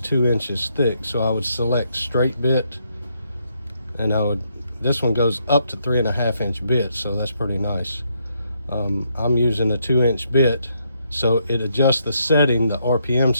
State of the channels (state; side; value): inverted; both; correlation -0.75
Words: inches thick. So I would select straight bit, and this one goes up to 3.5-inch bits, so that's pretty nice. I'm using a 2-inch bit, so it adjusts the setting, the RPM